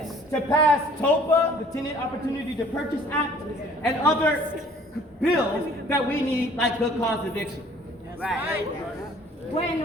to pass TOPA, the Tenant Opportunity to Purchase Act, and other bills that we need, like good cause eviction.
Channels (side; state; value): both; normal; correlation 0.54